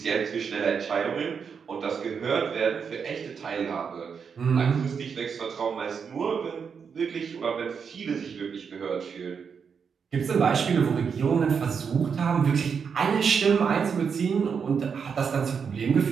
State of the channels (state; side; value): quieter; left; 6.3 dB